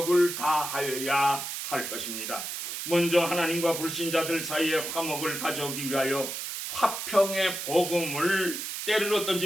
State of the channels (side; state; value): right; noise; hiss, 5 dB below the sound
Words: 다하여야 할 것입니다. 먼저 하나님과 불신자들 사이에 화목을 가져오기 위하여 화평의 복음을 때를